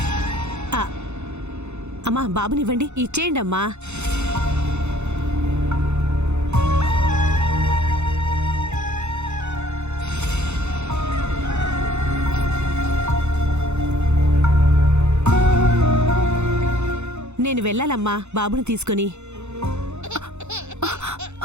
అమ్మా బాబునివ్వండి, ఇచ్చేయండి అమ్మా. నేను వెళ్ళాలమ్మా బాబుని తీసుకుని.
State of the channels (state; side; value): late; left; 0.82 ms